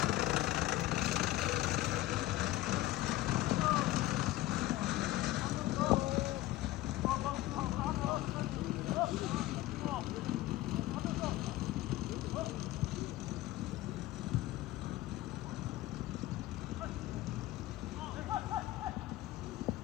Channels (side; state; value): right; quieter; 16.3 dB